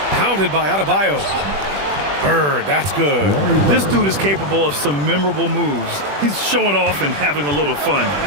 pounded by Adebayo. Bird, that's good. This dude is capable of some memorable moves. He's showing off and having a little fun.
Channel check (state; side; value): late; left; 21 ms